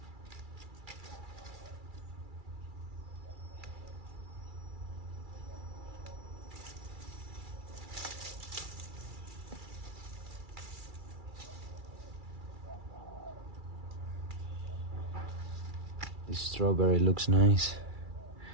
This strawberry looks nice,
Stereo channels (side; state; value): left; late; 2.3 ms